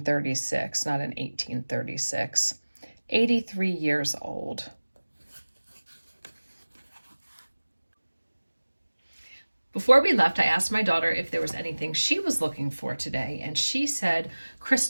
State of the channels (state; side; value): inverted; both; correlation -1.00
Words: not an 1836. 83 years old. Before we left, I asked my daughter if there was anything she was looking for today, and she said